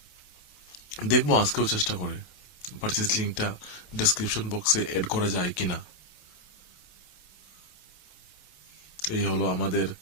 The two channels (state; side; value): late; right; 28 ms